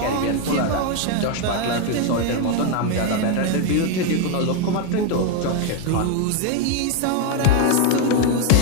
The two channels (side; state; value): both; different; correlation 0.01